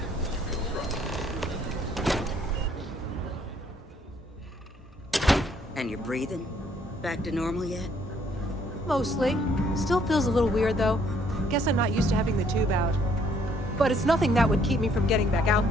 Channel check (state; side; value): normal; both; correlation 0.65